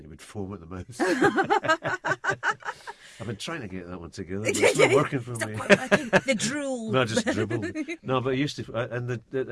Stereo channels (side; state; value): both; identical; correlation 1.00